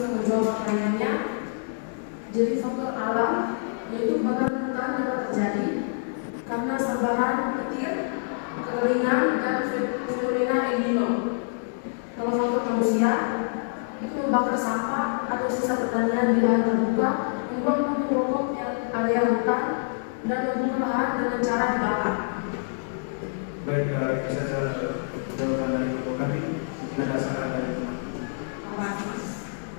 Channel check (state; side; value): silent; right; digital silence